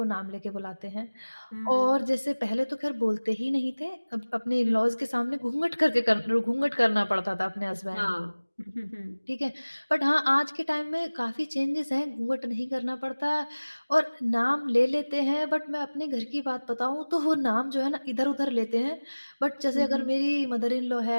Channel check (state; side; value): inverted; both; correlation -1.00